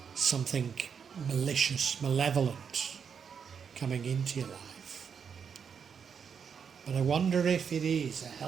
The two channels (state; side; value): quieter; left; 6.8 dB